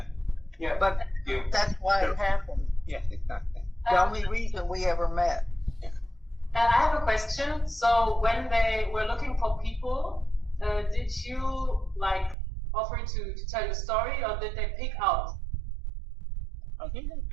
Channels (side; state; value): left; drops out; at 12.4 s